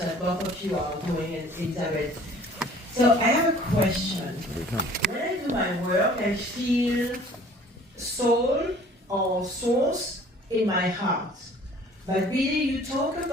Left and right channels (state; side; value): normal; both; correlation 0.51